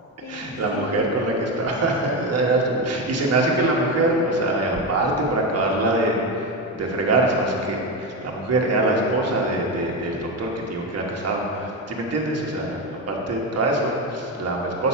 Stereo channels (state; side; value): normal; both; correlation 0.14